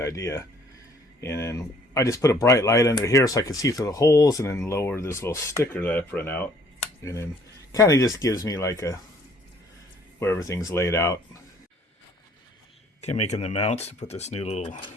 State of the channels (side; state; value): both; normal; correlation 0.59